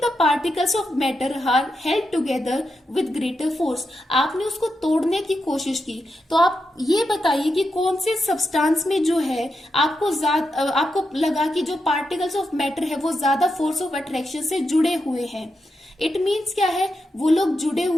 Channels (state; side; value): normal; both; correlation 0.86